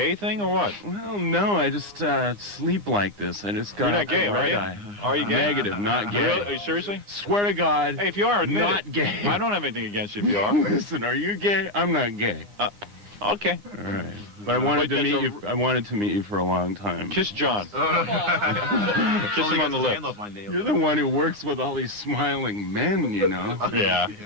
thing or what? Well, no, I just sleep like this. I just got You're not gay, a are red you? eye. Are you gay? Negative, not gay. Really? Are you seriously? Swear to God. Hey, if you are, admit not it. gay. I don't have anything against you if you are. Listen, are you gay? I'm not gay. Okay. All right. But I wanted to meet you. I wanted to meet you for a long time. Kiss John. Kiss him on the lips. You're the one who works with all these smiling men, you know. Yeah,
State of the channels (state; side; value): late; left; 9.8 ms